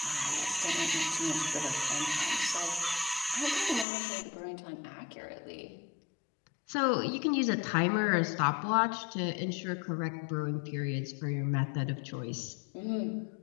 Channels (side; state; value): right; drops out; at 3.9 s